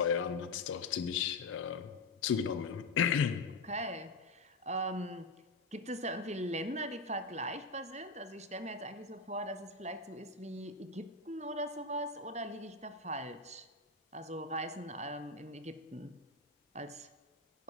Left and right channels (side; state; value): right; quieter; 3.5 dB